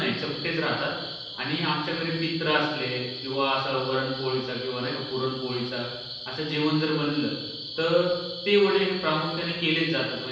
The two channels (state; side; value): identical; both; correlation 1.00